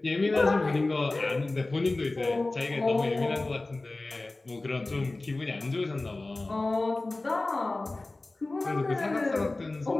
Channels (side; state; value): right; quieter; 3.1 dB